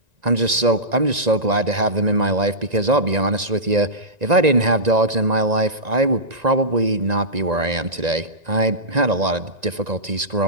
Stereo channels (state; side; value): late; left; 1.9 ms